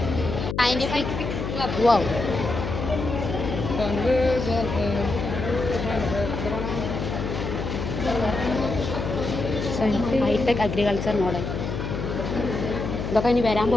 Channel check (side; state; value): left; noise; hum, 4 dB below the sound